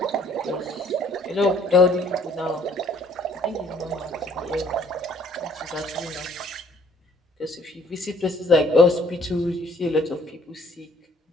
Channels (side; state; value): both; normal; correlation 0.60